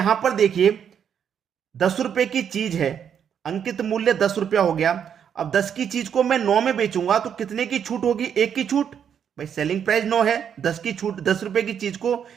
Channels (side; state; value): left; quieter; 8.2 dB